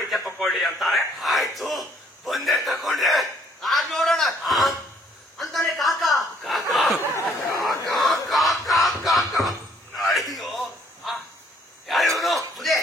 ತಕೊಳ್ಳಿ ಅಂತಾರೆ. ಆಯ್ತು ಬಂದೆ ತಕೊಂಡ್ರೆ ಆಗ ನೋಡೋಣ ಅಂತಾನೆ ಕಾಕ. ಅಯ್ಯೋ ಯಾರು ಬುದ್ಧಿ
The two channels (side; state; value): both; normal; correlation 0.64